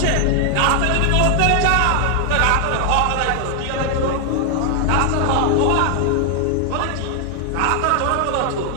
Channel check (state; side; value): different; both; correlation 0.00